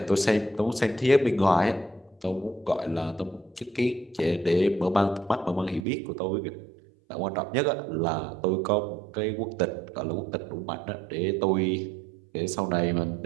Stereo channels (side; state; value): left; drops out; at 5.9 s